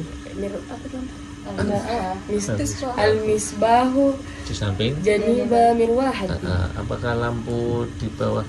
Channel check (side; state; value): both; identical; correlation 1.00